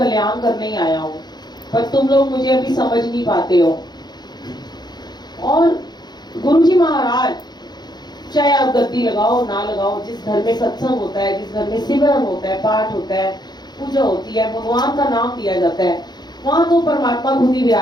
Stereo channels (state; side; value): late; right; 0.20 ms